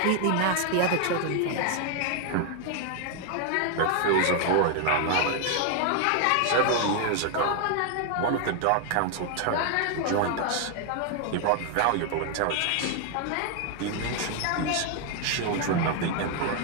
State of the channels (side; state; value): both; different; correlation 0.00